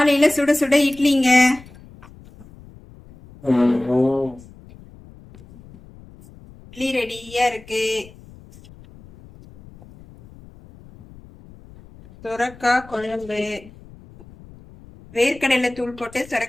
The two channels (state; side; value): noise; left; rumble, 22 dB below the sound